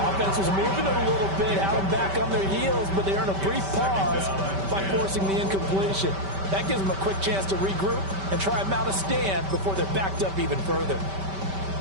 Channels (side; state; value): left; late; 5.2 ms